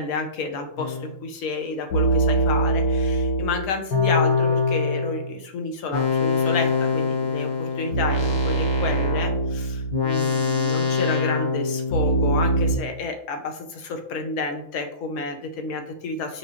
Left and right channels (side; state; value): right; late; 5.3 ms